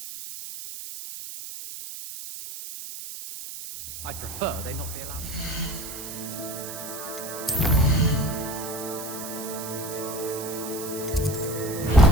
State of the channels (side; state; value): right; noise; hiss, 9 dB below the sound